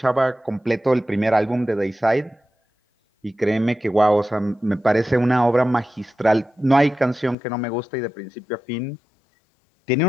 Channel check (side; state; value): right; drops out; at 7.4 s